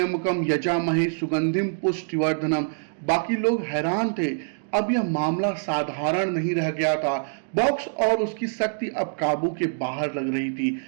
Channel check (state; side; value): silent; left; digital silence